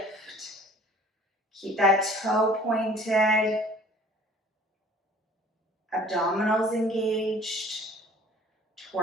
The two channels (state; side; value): normal; both; correlation 0.50